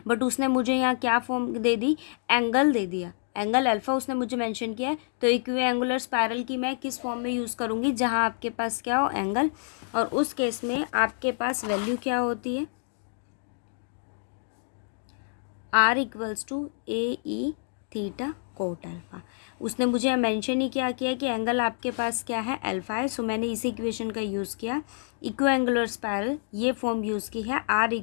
बट उसने मुझे यहाँ क्या फॉर्म दे दी, एंगल दे दिया, एंगल अल्फा उसने मुझे मेंशन किया है। तो इक्विएंगुलर स्पायरल की मैं किस फॉर्म में यूज़ करूँगी, जहाँ आपके पास क्या हो, एंगल, और उस केस में आपके पास वैल्यू क्या होती है, r equals to A E theta cot alpha. उसने मुझे मेंशन ही क्या किया कि एंगल आपके पास क्या है, अल्फा है। सो मैंने इसी इक्वेशन का यूज़ किया, इक्विएंगुलर स्पायरल ये फॉर्म यूज़ की है, r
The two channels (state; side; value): silent; right; digital silence